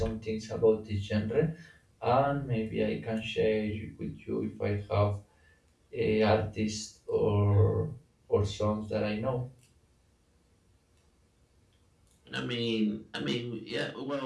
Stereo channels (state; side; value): identical; both; correlation 1.00